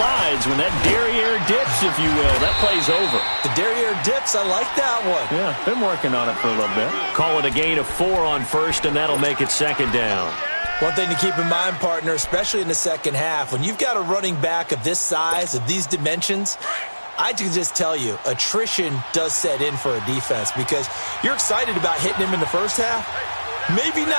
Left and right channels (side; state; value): both; inverted; correlation -1.00